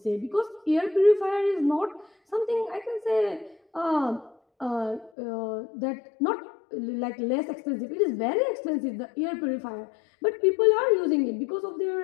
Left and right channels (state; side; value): drops out; right; at 5.1 s